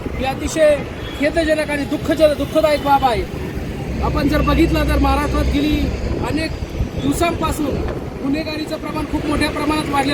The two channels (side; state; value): both; identical; correlation 1.00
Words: ही अतिशय खेदजनक आणि दुःखदायक बाब आहे. आपण जर बघितलं तर महाराष्ट्रात गेली अनेक दिवसांपासून गुन्हेगारीचं प्रमाण खूप मोठ्या प्रमाणात